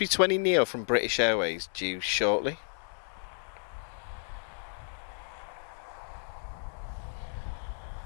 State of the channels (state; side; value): silent; right; digital silence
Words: from British Airways due shortly.